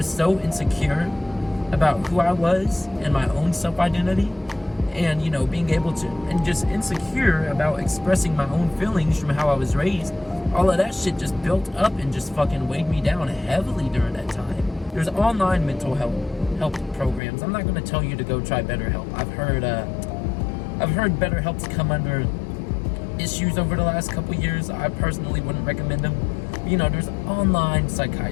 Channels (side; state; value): right; drops out; at 17.2 s